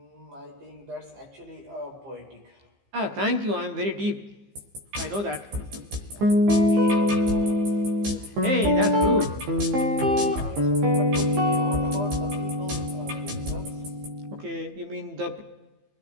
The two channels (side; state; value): left; late; 15 ms